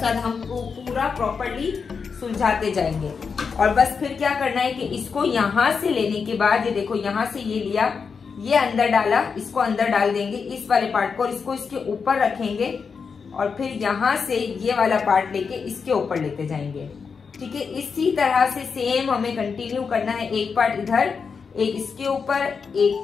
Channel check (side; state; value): right; quieter; 5.6 dB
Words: साथ हम पूरा प्रॉपर्ली सुलझाते जाएंगे। और बस फिर क्या करना है कि इसको यहाँ से लेने के बाद, ये देखो यहाँ से ये लिया, ये अंदर डाला, इसको अंदर डाल देंगे इस वाले पार्ट को और इसको इसके ऊपर रखेंगे और फिर यहाँ से ये वाला पार्ट लेके इसके ऊपर लेते जाएंगे। ठीक है, इसी तरह से सेम हमें कंटिन्यू करना है। एक पार्ट इधर, एक इसके ऊपर,